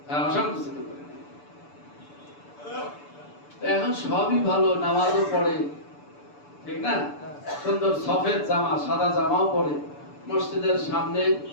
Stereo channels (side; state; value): right; late; 6.9 ms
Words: অসন্তুষ্ট করে দেয়। এখন সবই ভালো, নামাজও পড়ে, ঠিক না? সুন্দর সফেদ জামা, সাদা জামাও পরে মসজিদের সামনে,